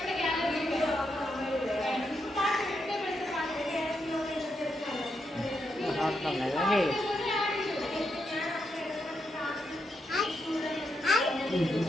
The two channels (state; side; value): normal; both; correlation 0.82